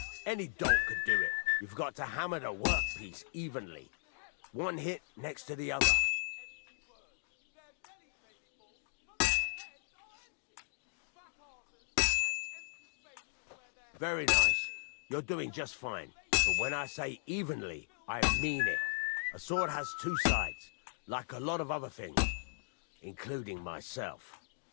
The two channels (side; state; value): right; silent; digital silence